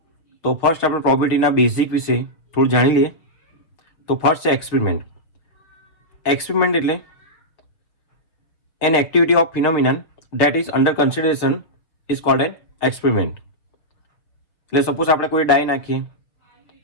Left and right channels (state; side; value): late; right; 6.2 ms